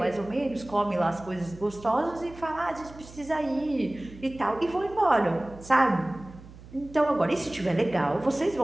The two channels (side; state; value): right; noise; hum, 18 dB below the sound